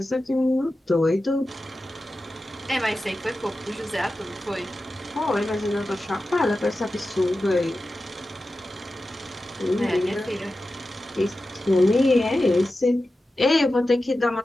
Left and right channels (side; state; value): both; normal; correlation 0.93